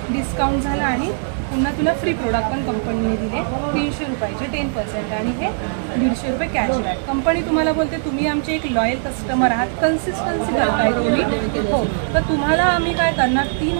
डिस्काउंट झाला आणि पुन्हा तुला फ्री प्रोडक्ट पण कंपनीने दिले 300 रुपयाचे 10% आणि हे 150 रुपये कॅशबॅक. कंपनी तुम्हाला बोलते तुम्ही आमचे एक लॉयल कस्टमर आहात, कन्सिस्टन्सी करताय तुम्ही. हो. तर तुम्हाला आम्ही काय करणार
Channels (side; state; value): left; silent; digital silence